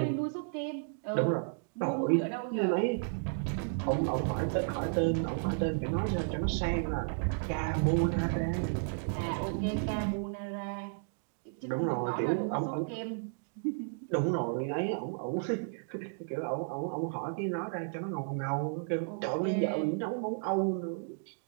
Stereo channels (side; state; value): left; silent; digital silence